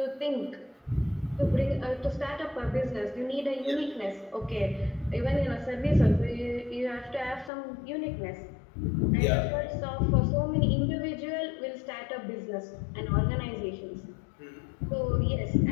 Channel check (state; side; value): drops out; right; at 7.5 s